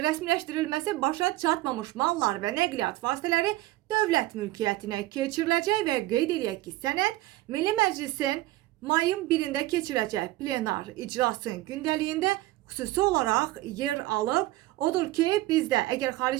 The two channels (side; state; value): left; quieter; 17.3 dB